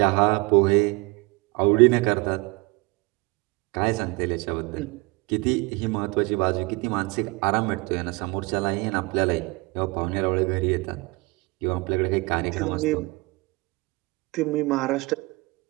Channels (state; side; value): quieter; left; 25.8 dB